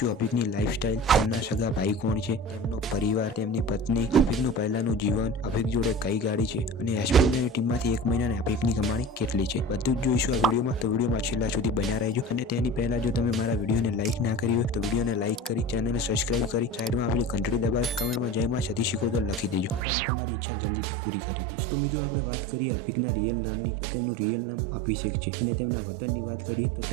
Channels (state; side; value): drops out; left; at 19.8 s